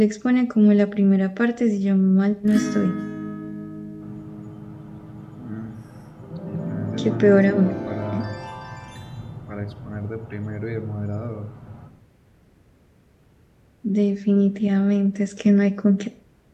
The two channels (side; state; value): both; identical; correlation 1.00